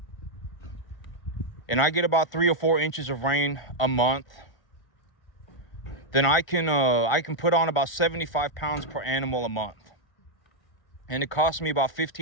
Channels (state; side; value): late; right; 1.3 ms